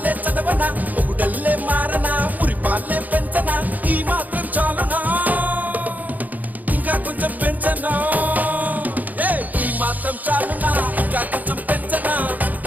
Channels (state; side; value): late; left; 0.081 ms